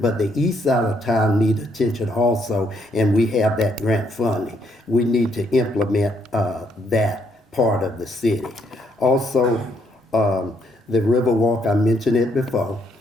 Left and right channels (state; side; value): normal; both; correlation 0.72